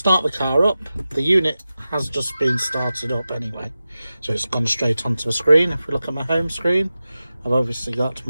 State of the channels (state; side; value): inverted; both; correlation -0.94